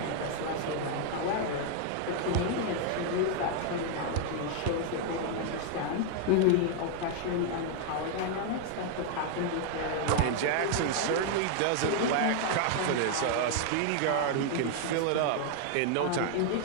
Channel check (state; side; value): different; both; correlation 0.00